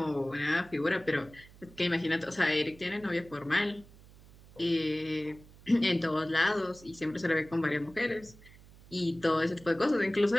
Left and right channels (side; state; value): right; noise; hum, 23 dB below the sound